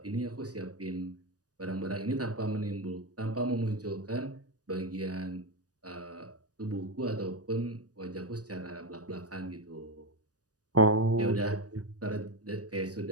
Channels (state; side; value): late; left; 0.68 ms